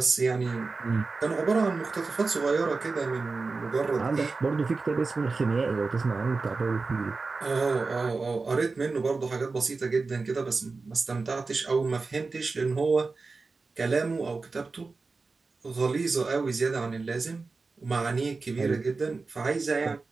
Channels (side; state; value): left; quieter; 4.0 dB